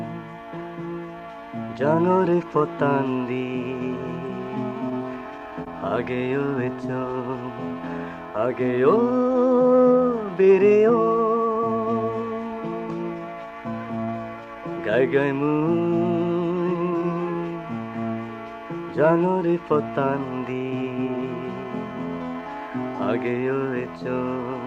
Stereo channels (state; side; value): identical; both; correlation 1.00